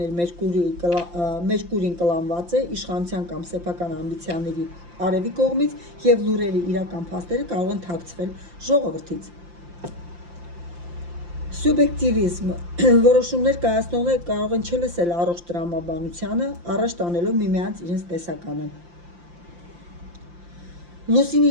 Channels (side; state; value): left; late; 5.8 ms